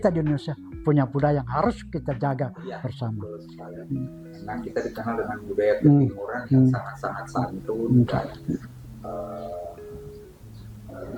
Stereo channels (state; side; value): identical; both; correlation 1.00